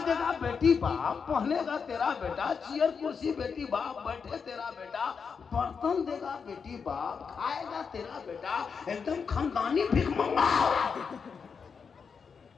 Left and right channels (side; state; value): right; quieter; 5.9 dB